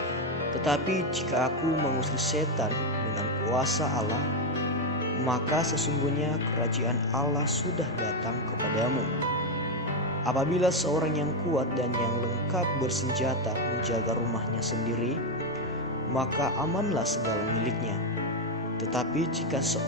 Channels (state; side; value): normal; both; correlation 0.06